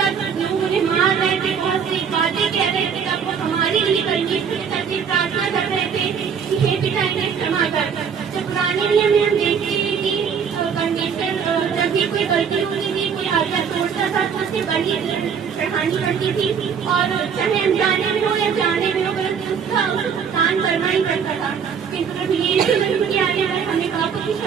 लोग उन्हें मार रहे थे, बहुत सी बातें कह रहे थे, तब वो हमारे लिए परमेश्वर के साथ प्रार्थना कर रहे थे कि हे पिता इन्हें क्षमा कर। तो पुराने नियम में हम देखते हैं कि परमेश्वर जब भी कोई गलती होती थी, कोई आज्ञा तोड़ता था तो उससे बड़ी चढ़ानी पड़ती थी और चाहे अनजाने में हो या जाने में हो उसका भुगतान करना ही पड़ता था। किंतु यीशु मसीह की आने पर हमें पापों की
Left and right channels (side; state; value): left; quieter; 6.9 dB